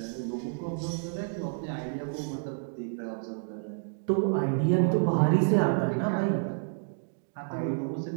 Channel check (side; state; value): left; silent; digital silence